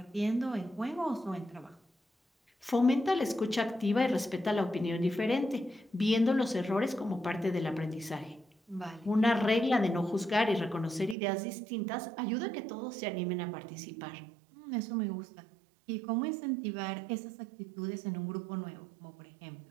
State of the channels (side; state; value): left; drops out; at 11.2 s